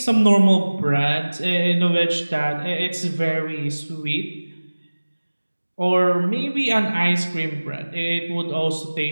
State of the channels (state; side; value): inverted; both; correlation -1.00